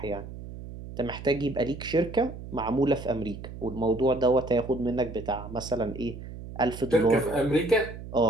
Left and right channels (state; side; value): noise; right; hum, 12 dB below the sound